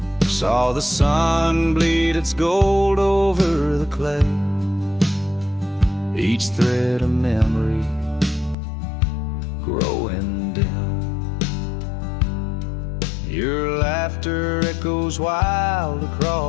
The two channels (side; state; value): right; drops out; at 8.6 s